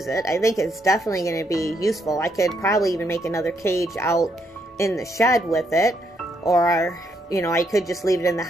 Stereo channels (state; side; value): normal; both; correlation 0.75